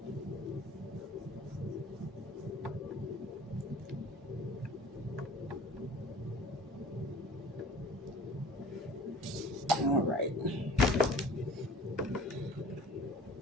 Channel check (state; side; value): normal; both; correlation 0.45